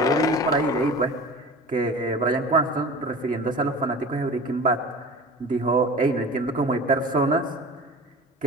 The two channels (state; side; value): normal; both; correlation 0.37